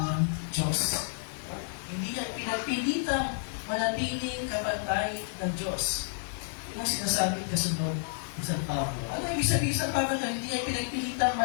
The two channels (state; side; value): silent; right; 57 dB below the other